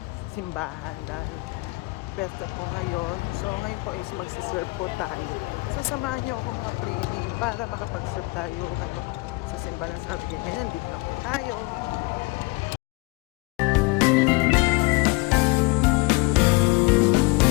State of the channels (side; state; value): right; quieter; 25.7 dB